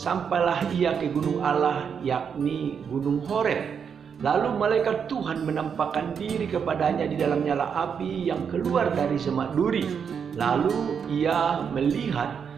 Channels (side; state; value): left; quieter; 7.0 dB